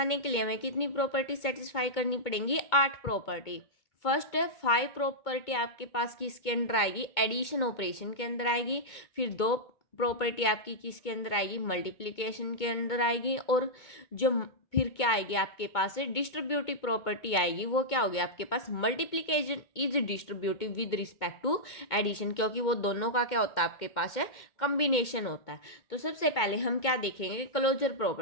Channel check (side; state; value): right; late; 2.2 ms